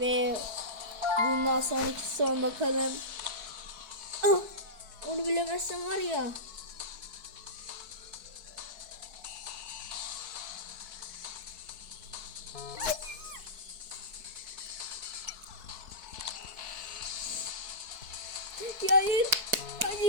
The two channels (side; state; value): left; late; 4.6 ms